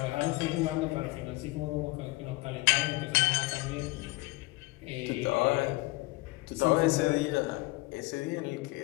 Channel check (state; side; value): quieter; right; 21.9 dB